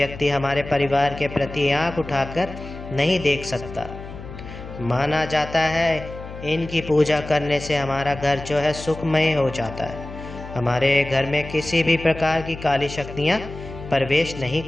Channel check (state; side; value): noise; left; hum, 12 dB below the sound